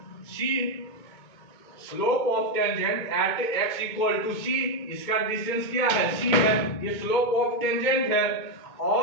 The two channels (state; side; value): late; right; 2.2 ms